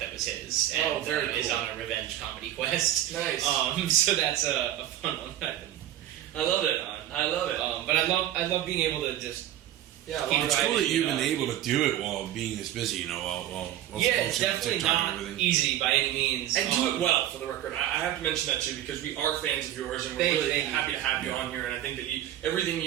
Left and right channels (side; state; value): left; quieter; 12.4 dB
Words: was his, and very is cool. on a revenge comedy quest. Nice. So that's a fun one that I've been I love it. on. I love it. But I love being able to just Yeah, keep It's writing, cool that you've been know. able to do it while being this busy, you know, while Yeah, it's posting on definitely TikTok not and everything. easy by any means. And do it well, for the record. I have to mention that too, because we are fans of yours, and we're Thank really you. happy to have you on here. And I think that everything